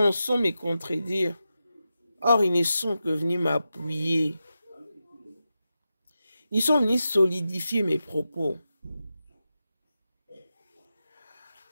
me contredire. Or, ils ne sont que venus m'appuyer. Ils sont venus solidifier mes propos.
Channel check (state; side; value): inverted; both; correlation -0.90